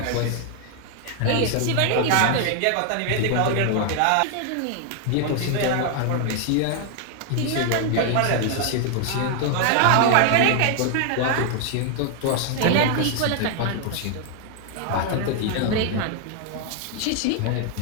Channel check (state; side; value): different; both; correlation 0.00